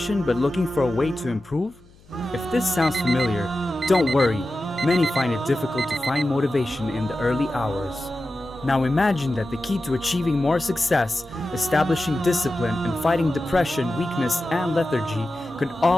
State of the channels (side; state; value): left; noise; hum, 27 dB below the sound